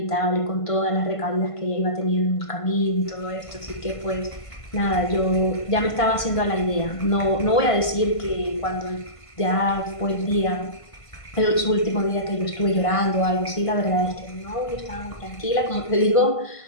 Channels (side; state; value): right; late; 1.5 ms